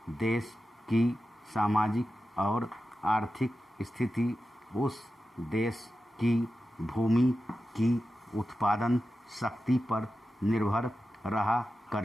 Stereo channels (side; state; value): both; normal; correlation 0.92